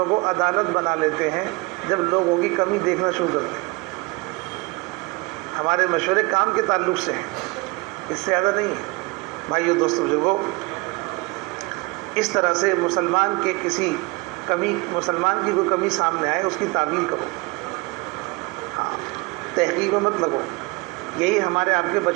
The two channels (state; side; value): quieter; left; 25.8 dB